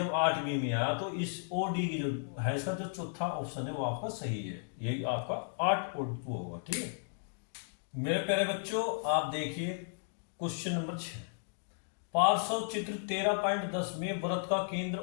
8 मिमी आया तो इस ओ डी की जो है इसका जो चौथा ऑप्शन है वो आपका सही है, यही आपका 8 और 2 होगा। ठीक है मेरे प्यारे बच्चों, आप देखिए क्वेश्चन नंबर 6, पार्श्व चित्र 13.10 में वृत्त का केंद्र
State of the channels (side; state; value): right; silent; digital silence